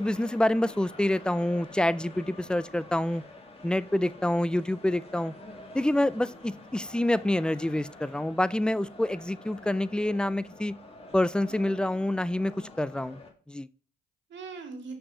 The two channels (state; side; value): normal; both; correlation 0.96